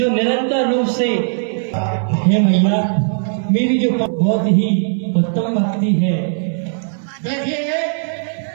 निरंतर रूप से, हे मैया, मेरी जो बहुत ही उत्तम भक्ति है। देखिए,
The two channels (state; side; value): silent; left; 60 dB below the other